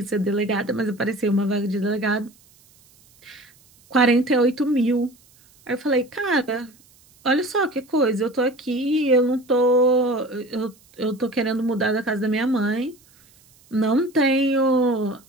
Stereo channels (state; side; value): noise; right; hiss, 30 dB below the sound